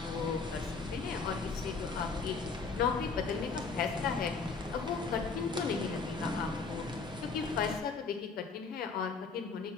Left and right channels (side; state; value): right; quieter; 4.7 dB